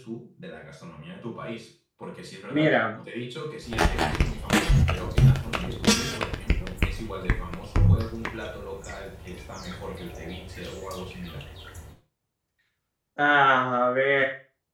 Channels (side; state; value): both; identical; correlation 1.00